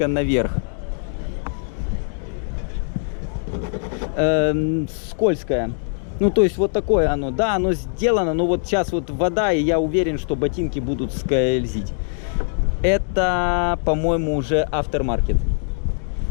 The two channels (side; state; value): right; silent; 63 dB below the other